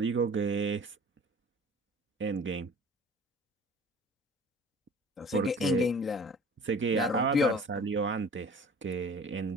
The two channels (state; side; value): normal; both; correlation 0.45